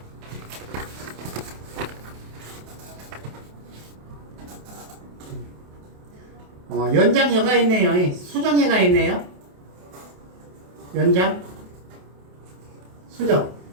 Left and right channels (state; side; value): late; left; 28 ms